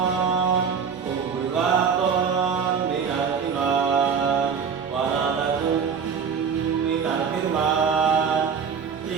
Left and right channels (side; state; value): left; quieter; 6.4 dB